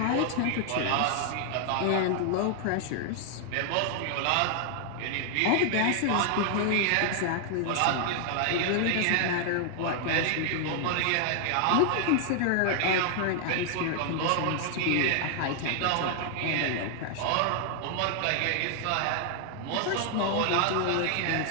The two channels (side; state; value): both; different; correlation 0.00